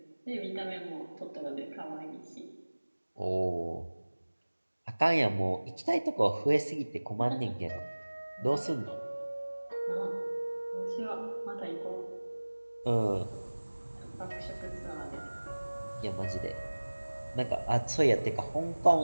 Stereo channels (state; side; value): inverted; both; correlation -1.00